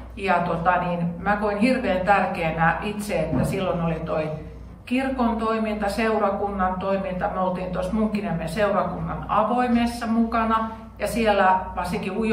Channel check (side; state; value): both; identical; correlation 1.00